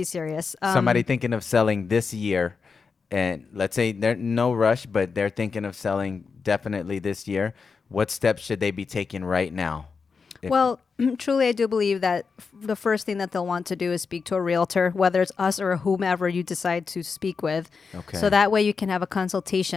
serious. Somebody thinking of selling this year, and let's say they're no rush, but they're thinking of selling definitely this year. What steps should they be taking right now? If- Well, truly, I do believe that the first thing that they'll want to do is speak to a realtor, whether it's us or whomever you decide to speak with. Okay. So that way you can have a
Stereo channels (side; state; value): right; quieter; 5.2 dB